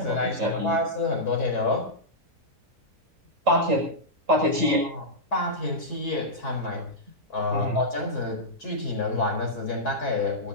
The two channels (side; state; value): both; normal; correlation -0.11